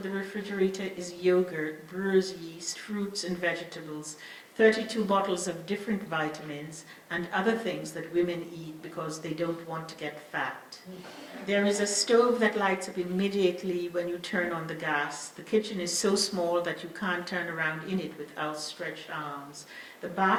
the refrigerator is yogurt, brewer's yeast, fruits and vegetables, 32 bottles of different vitamins, and other things that women eat because they don't want to get fat. There is a stove that lights up immediately when you turn on the gas. The kitchen is so small that you can't turn around in it with outstretched arms. The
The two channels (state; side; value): identical; both; correlation 1.00